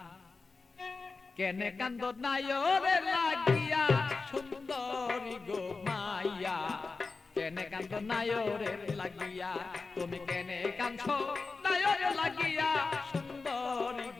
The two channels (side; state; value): right; quieter; 4.1 dB